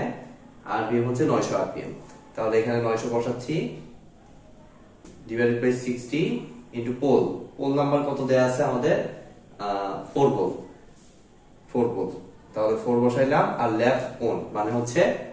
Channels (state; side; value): identical; both; correlation 1.00